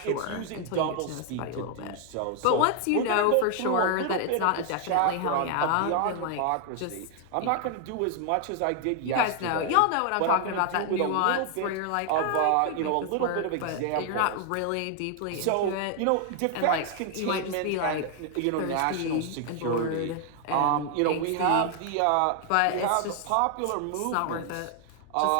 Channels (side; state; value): both; different; correlation 0.00